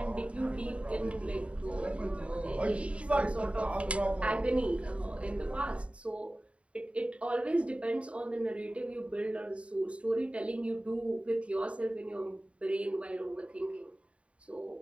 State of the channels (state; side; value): late; left; 0.062 ms